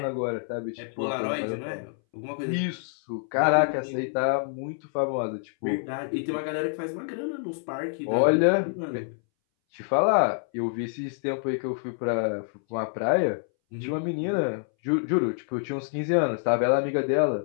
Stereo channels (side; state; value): right; silent; 60 dB below the other